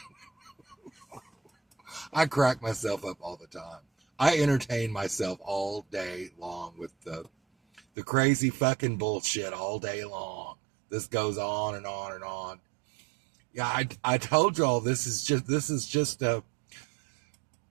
I crack myself up all the time. I entertain myself all day long with the crazy fucking bullshit all day long. This goes on and on and on. Yeah, I told y'all this is just a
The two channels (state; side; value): drops out; left; at 7.8 s